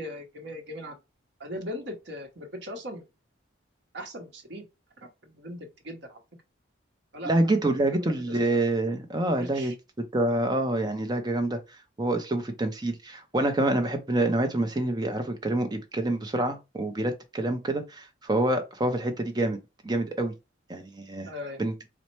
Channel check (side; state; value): both; normal; correlation 0.61